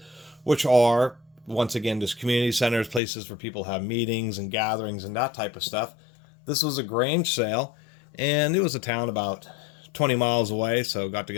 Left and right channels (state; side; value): drops out; right; at 3.0 s